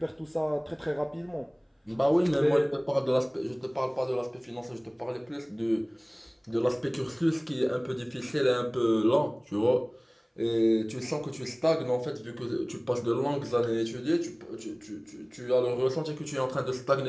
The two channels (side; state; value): both; identical; correlation 1.00